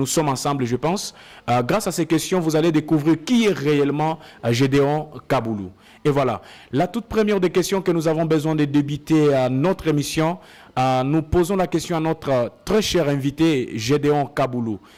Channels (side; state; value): both; identical; correlation 1.00